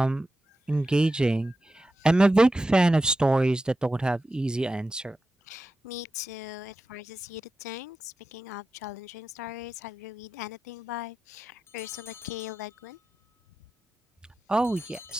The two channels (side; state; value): both; normal; correlation 0.92